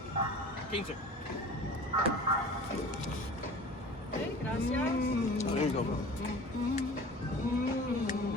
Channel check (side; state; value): both; normal; correlation 0.40